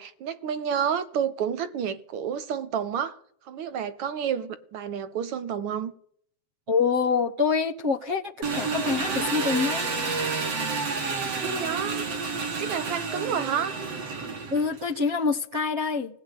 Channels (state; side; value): late; left; 7.8 ms